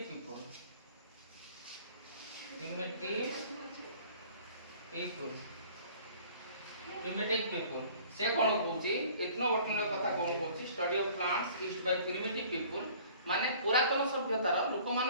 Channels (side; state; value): both; inverted; correlation -0.51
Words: people से कौन कहूची इथनोबॉटनी कथा कौन कहूची study of plants used by primitive people माने पुरातन सभ्यतार लोक